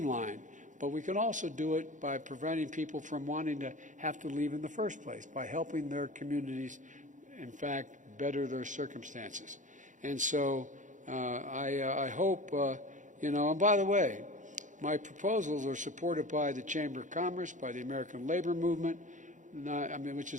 but we can also do it by preventing people from wanting to have to leave in the first place, by helping their communities, in fact, better their circumstances. And so I hope, and by the way, my proposals are supported by the Chamber of Commerce, by the American Labor Movement, which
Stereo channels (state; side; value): late; left; 0.36 ms